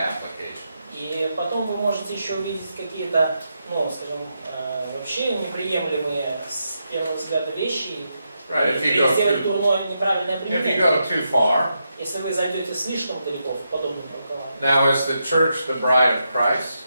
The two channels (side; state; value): both; inverted; correlation -0.84